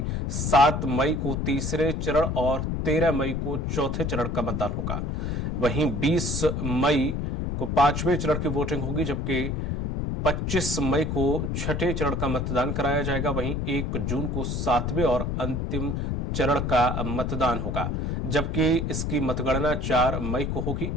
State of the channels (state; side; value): noise; left; rumble, 1 dB below the sound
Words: 7 मई को तीसरे चरण और 13 मई को चौथे चरण का मतदान होगा। वहीं 20 मई को 5वें चरण की वोटिंग होगी, जबकि 25 मई को छठे चरण का मतदान कराया जाएगा। वहीं 1 जून को 7वें और अंतिम चरण का मतदान होगा, जबकि इसकी मतगणना 4 मई को होगी।